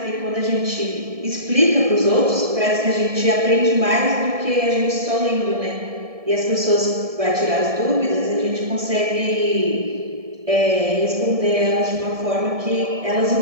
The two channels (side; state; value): left; late; 1.7 ms